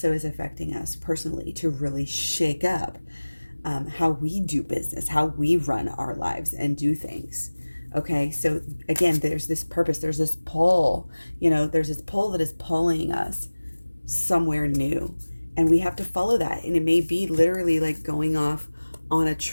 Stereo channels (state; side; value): inverted; both; correlation -1.00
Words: is affecting us personally to really shake up how we do business, how we run our lives and do things. Okay, so again, there's this purpose, there's this pull, there's this pull that is pulling us somewhere new. And we have to follow that. And it may be literally like going off on a